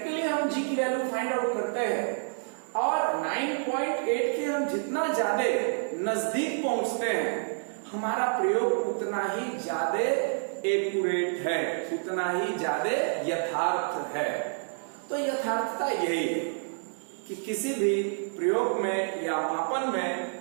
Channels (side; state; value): left; silent; digital silence